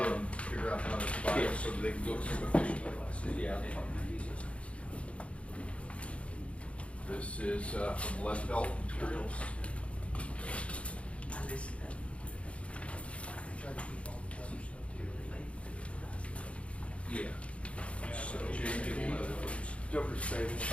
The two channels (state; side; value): late; right; 0.062 ms